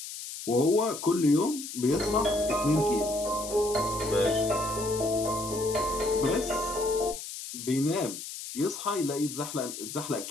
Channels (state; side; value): noise; left; hiss, 9 dB below the sound